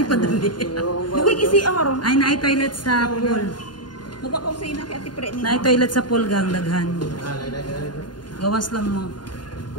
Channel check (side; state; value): right; late; 0.71 ms